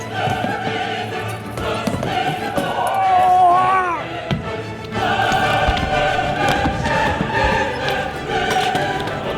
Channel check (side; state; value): both; identical; correlation 1.00